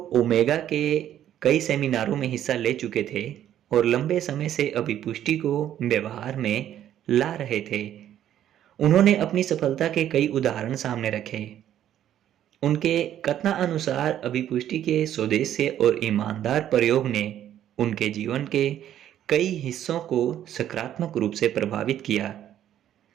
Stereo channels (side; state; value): left; quieter; 11.2 dB